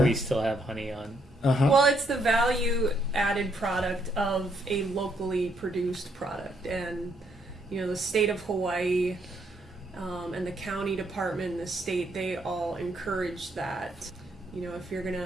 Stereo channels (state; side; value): normal; both; correlation 0.73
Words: still have honey on. Well, it's the value added product of a locally produced product, and the state of Hawaii and the county department and the state, they all encourage that. If you're